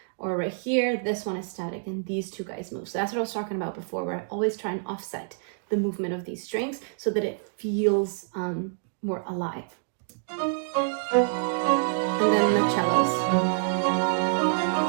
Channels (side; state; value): left; silent; digital silence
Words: Or right here, this one is static, and these two guys move. So that's what I was talking about before, where I always try and offset the movement of these strings so that it feels more alive. And then the cellos.